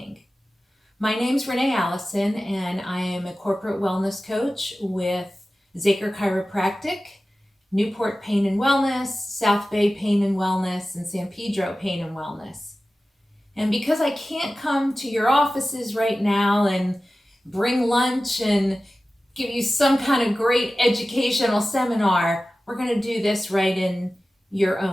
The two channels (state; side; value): normal; both; correlation 0.95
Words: My name's Renee Alison, and I am a corporate wellness coach with Zaker Chiropractic, Newport Pain and Wellness, South Bay Pain and Wellness, and San Pedro Pain and Wellness. And because I can't come to your offices right now and bring lunch and give you some kind of great educational seminar, we're going to do this right in your